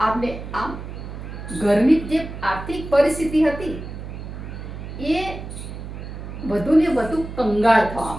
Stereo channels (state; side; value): noise; right; hum, 10 dB below the sound